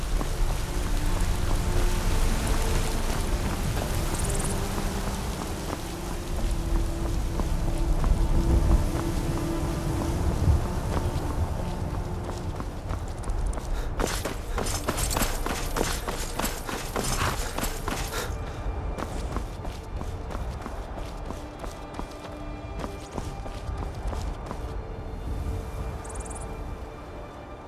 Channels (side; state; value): both; identical; correlation 1.00